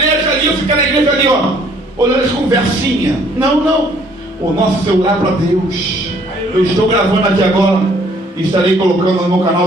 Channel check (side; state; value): both; normal; correlation 0.61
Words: ali, eu ficar na igreja ali, ó, olhando as conversinhas. Não, o nosso celular para Deus. Eu estou gravando aqui agora e estarei colocando no meu